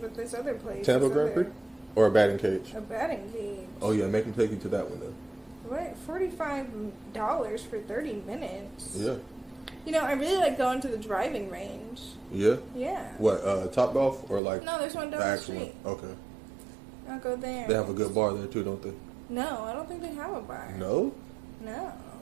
but this other place. Tampa this Grand other- Prix? Or a batting cage? A batting cage. Oh, yeah, make them take you to that one then. What? $45 for 30 minutes? Yeah. I really like going to the driving range. Yeah? Yeah. What, Top Golf or like No, there's one down the the actual one? street. Okay. I'll go there. They have a good bar there too, don't they? No, I don't think they have a bar. No? No.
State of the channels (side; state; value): left; drops out; at 14.4 s